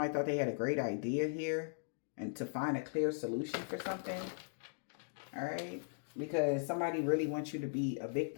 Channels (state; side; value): silent; right; digital silence